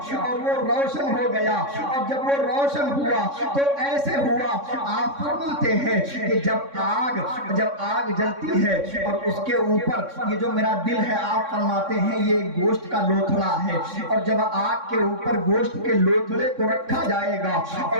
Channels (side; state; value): left; late; 3.6 ms